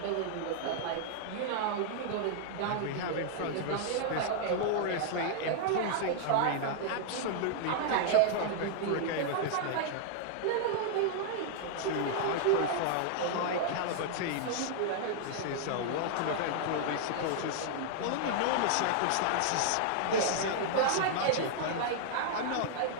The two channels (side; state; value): both; different; correlation -0.01